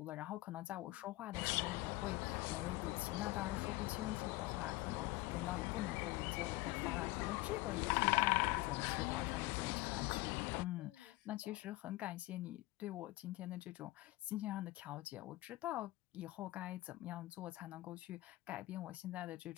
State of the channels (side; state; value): right; quieter; 19.8 dB